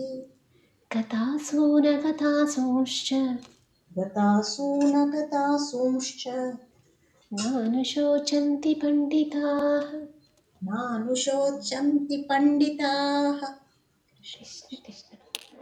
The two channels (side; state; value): both; identical; correlation 1.00